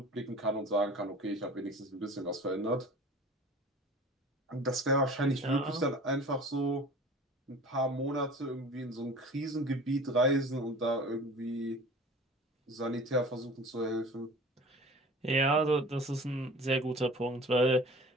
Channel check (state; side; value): normal; both; correlation 0.42